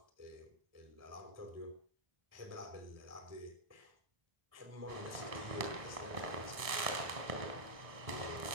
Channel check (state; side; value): late; left; 1.6 ms